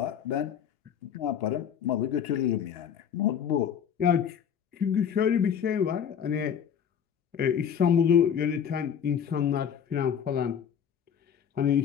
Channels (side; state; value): right; quieter; 8.2 dB